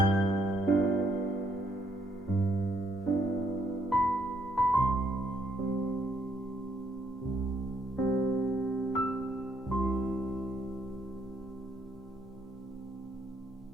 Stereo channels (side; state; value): both; normal; correlation 0.71